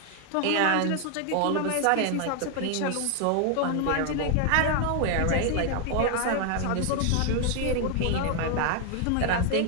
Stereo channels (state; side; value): different; both; correlation 0.00